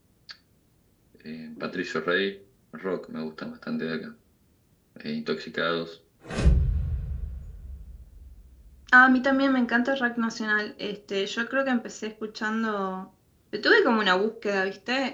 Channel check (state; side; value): identical; both; correlation 1.00